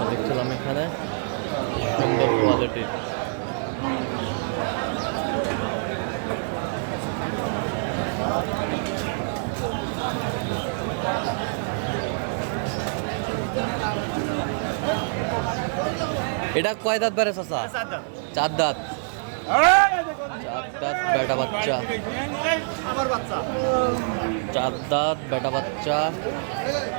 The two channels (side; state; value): left; silent; 61 dB below the other